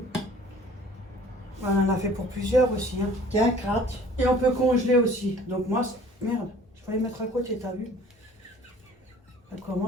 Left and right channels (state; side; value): normal; both; correlation 0.50